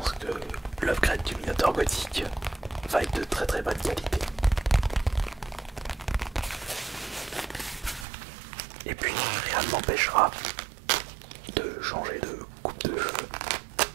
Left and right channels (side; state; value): left; drops out; at 8.1 s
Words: que l'upgrade du Minotaur gothique va être de très très bonne qualité. Et puis rien ne m'empêchera de changer de coupe de